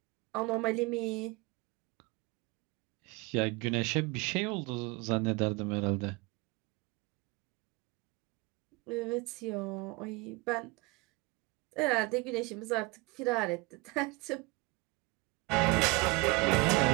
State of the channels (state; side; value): quieter; left; 25.6 dB